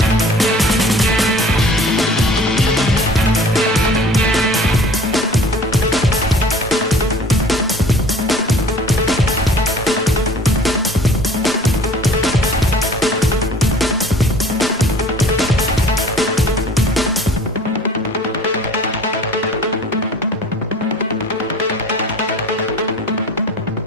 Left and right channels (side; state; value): both; normal; correlation 0.47